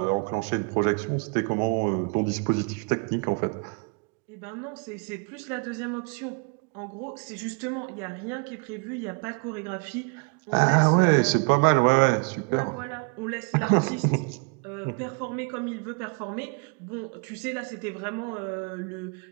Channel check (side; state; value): left; quieter; 35.6 dB